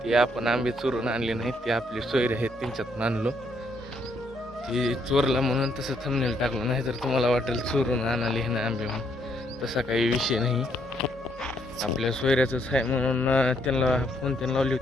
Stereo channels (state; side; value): normal; both; correlation 0.72